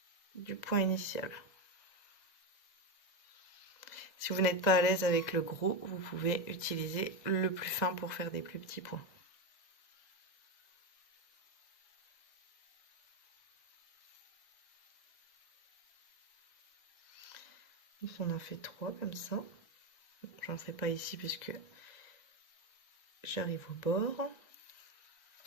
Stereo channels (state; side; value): late; right; 1.6 ms